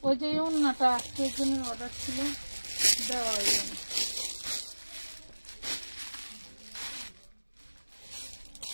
ওই যে ওড়নাটা আজকের জন্য অর্ডার ছিল দেওয়া হইল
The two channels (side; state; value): both; inverted; correlation -1.00